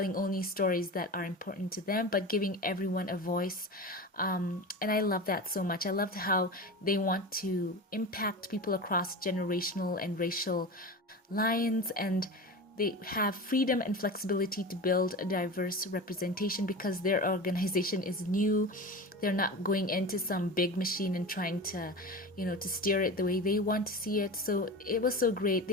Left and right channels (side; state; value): both; normal; correlation 0.29